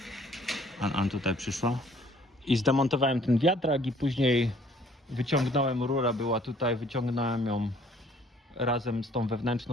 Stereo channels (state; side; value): normal; both; correlation 0.58